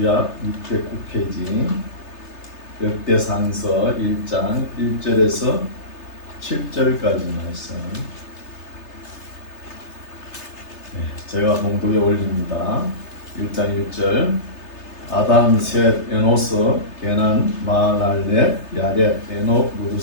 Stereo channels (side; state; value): right; late; 3.3 ms